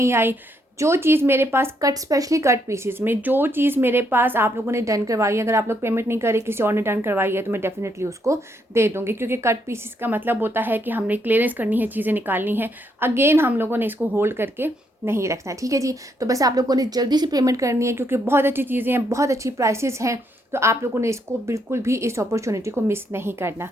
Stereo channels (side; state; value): both; normal; correlation 0.75